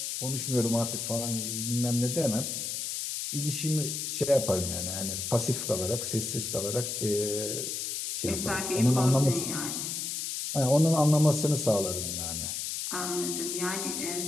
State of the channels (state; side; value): noise; left; hiss, 3 dB below the sound